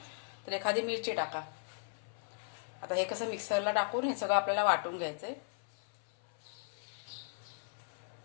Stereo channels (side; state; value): right; silent; 53 dB below the other